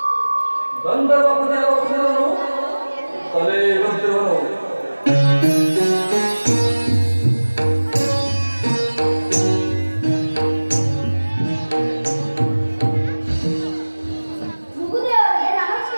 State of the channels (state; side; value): inverted; both; correlation -1.00